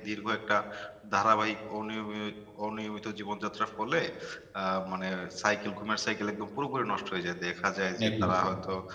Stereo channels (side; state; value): both; identical; correlation 1.00